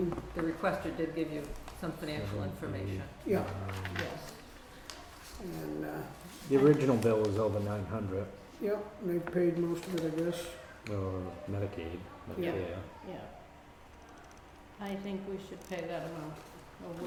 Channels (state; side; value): identical; both; correlation 1.00